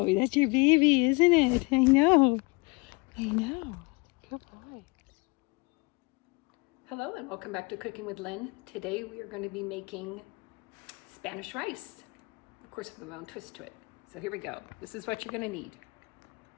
that's your baby, isn't it? I know. Good boy. Hello and welcome back to Cooking with Lynn. Today we are going to be making Spanish rice. Of course, with my own twist to it. So here we go. This is what you're going to need.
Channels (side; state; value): right; quieter; 27.7 dB